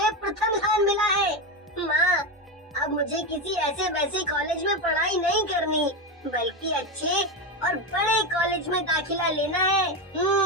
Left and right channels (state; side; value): normal; both; correlation 0.14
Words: प्रथम स्थान मिला है। माँ, अब मुझे किसी ऐसे वैसे कॉलेज में पढ़ाई नहीं करनी, बल्कि अच्छे और बड़े कॉलेज में दाखिला लेना है।